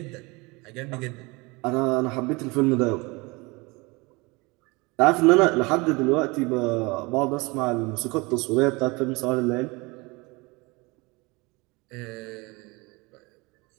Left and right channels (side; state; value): left; quieter; 25.6 dB